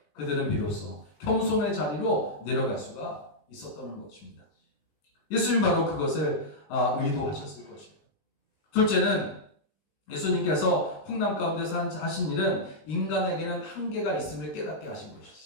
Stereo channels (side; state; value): right; late; 19 ms